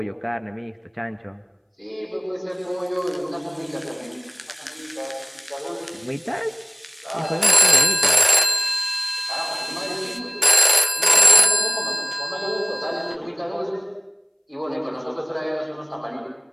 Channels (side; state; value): both; identical; correlation 1.00